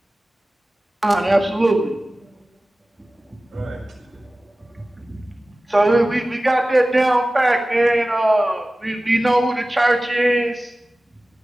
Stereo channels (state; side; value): normal; both; correlation 0.97